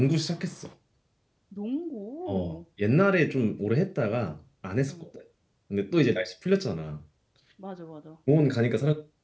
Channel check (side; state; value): both; identical; correlation 1.00